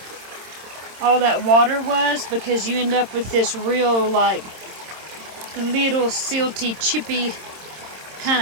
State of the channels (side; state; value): left; late; 26 ms